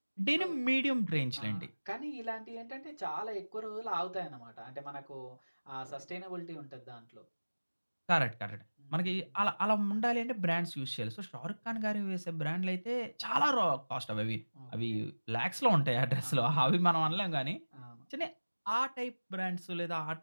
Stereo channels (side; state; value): both; inverted; correlation -1.00